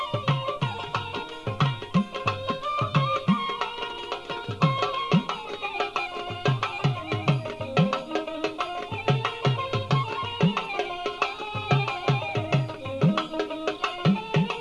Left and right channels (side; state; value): both; identical; correlation 1.00